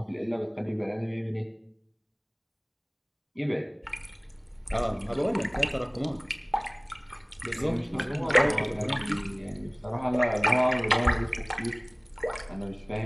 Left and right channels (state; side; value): identical; both; correlation 1.00